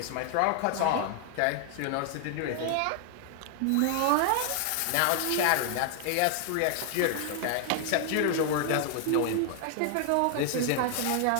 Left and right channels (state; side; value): different; both; correlation 0.00